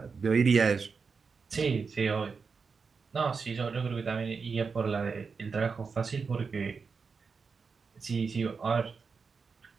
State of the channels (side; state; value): left; quieter; 5.2 dB